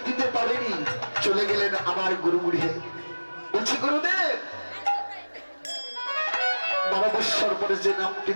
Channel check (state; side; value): inverted; both; correlation -1.00